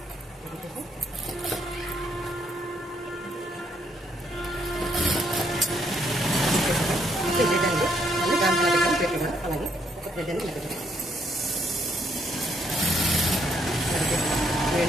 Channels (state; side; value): normal; both; correlation 0.72